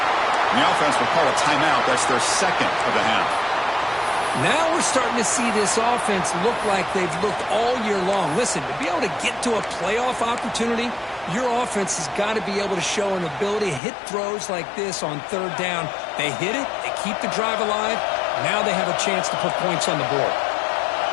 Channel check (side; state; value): right; drops out; at 13.8 s